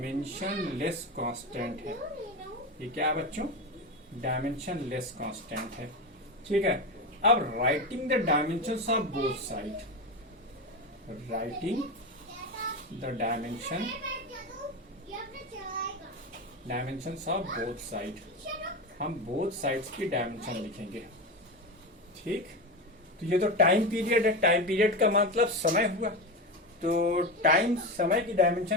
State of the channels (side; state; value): both; normal; correlation 0.19